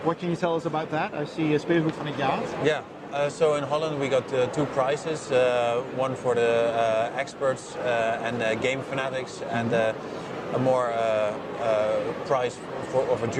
what can you tell us about that? I see Speelgoed van het jaar. Yeah. So in Holland we got 2 prizes, one for the experts and game fanatics, and a more prize of a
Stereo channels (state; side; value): identical; both; correlation 1.00